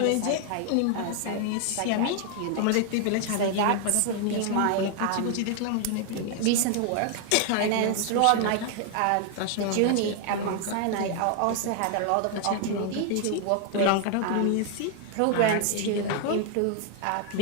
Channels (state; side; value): different; both; correlation 0.00